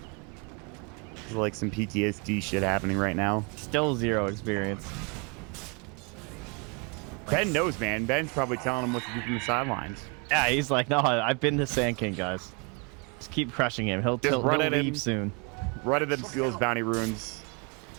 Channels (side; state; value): left; quieter; 32.9 dB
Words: There's like some PTSD shit happening right now. Still 0 experience. Ben knows, man. Ben's probably telling him what to do from the sidelines. Yeah, he's like, no, I've been the Sand King, guys. Just keep crushing him. He'll leave soon. Run at him, steals bounty runes.